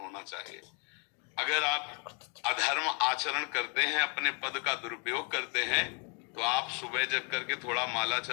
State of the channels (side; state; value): right; quieter; 34.5 dB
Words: चाहिए। अगर आप अधर्म आचरण करते हैं, अपने पद का दुरुपयोग करते हैं, तो आप सुबह जग करके थोड़ा माला